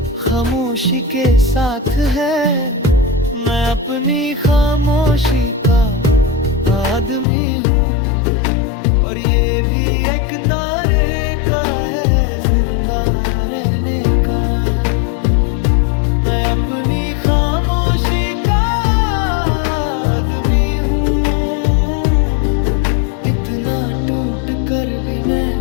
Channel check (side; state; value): right; drops out; at 7.2 s